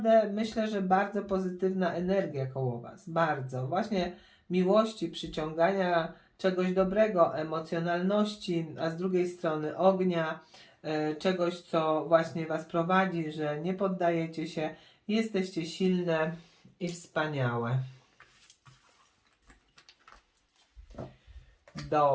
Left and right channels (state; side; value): identical; both; correlation 1.00